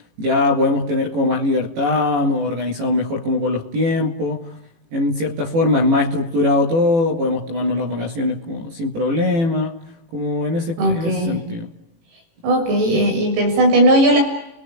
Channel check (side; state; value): left; late; 18 ms